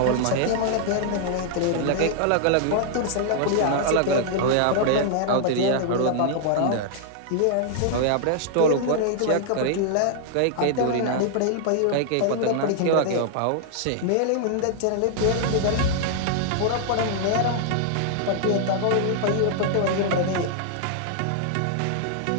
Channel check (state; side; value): different; both; correlation -0.01